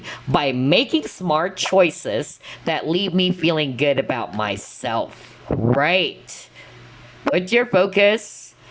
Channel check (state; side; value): identical; both; correlation 1.00